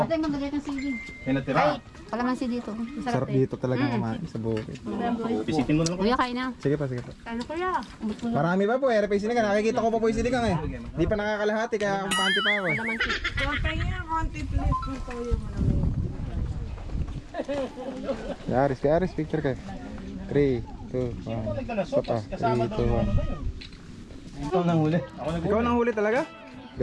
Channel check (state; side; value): identical; both; correlation 1.00